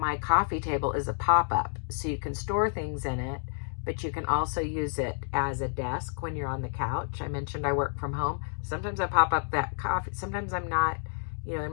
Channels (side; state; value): right; silent; 58 dB below the other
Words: coffee table is a pop-up, so you can store things in it, but you can also use it as a desk when you're on the couch. I mentioned I work from home. Sometimes I pop up that coffee. Sometimes I'm not,